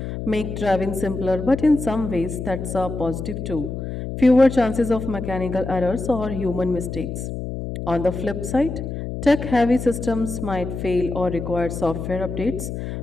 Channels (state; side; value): noise; left; hum, 6 dB below the sound